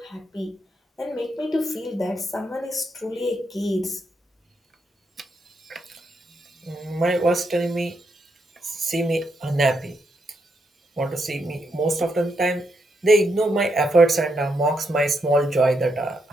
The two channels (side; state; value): both; normal; correlation 0.80